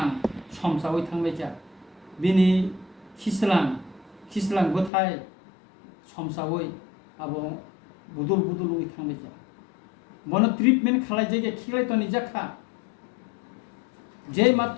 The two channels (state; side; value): drops out; right; at 4.9 s